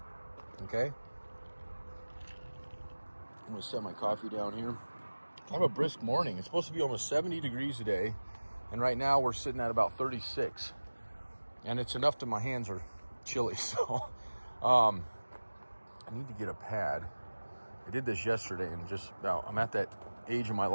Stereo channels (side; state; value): both; inverted; correlation -1.00